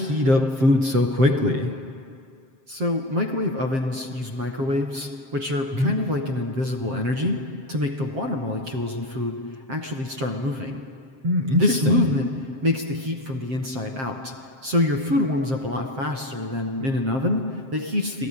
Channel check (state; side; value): late; left; 7.5 ms